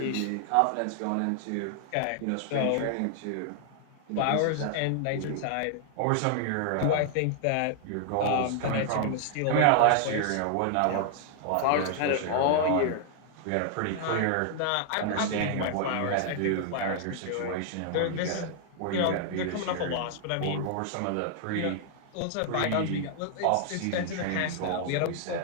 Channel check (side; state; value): both; different; correlation 0.00